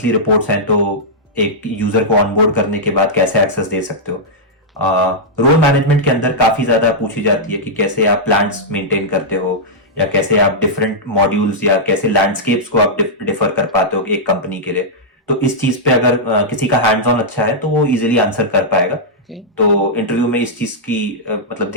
रिपोर्ट्स हैं, तो एक यूजर को ऑनबोर्ड करने के बाद कैसे एक्सेस दे सकते हो। रोल मैनेजमेंट के अंदर काफी ज्यादा पूछी जाती है कि कैसे आप प्लान्स मेंटेन करते हो, या कैसे आप डिफरेंट मॉड्यूल्स या कैसे लैंडस्केप्स को आप डिफर कर पाते हो एक कंपनी के लिए। तो इस चीज पे अगर किसी का हैंड्स ऑन अच्छा है तो वो इजीली आंसर कर पाएगा। Okay. तो इंटरव्यू में इस चीज की मतलब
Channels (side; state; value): both; normal; correlation -0.09